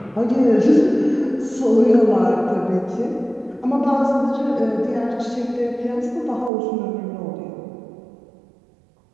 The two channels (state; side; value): drops out; left; at 6.5 s